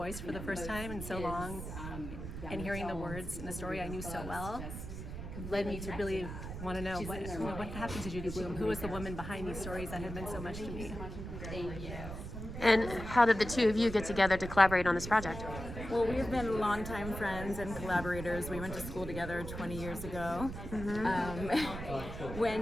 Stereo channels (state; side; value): noise; right; rumble, 8 dB below the sound